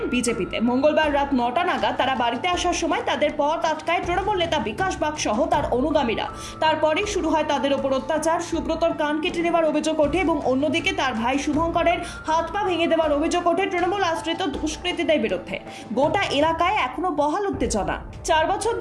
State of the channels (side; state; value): both; identical; correlation 1.00